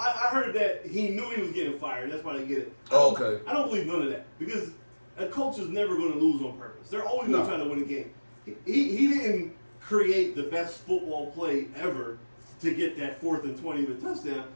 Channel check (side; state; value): both; inverted; correlation -1.00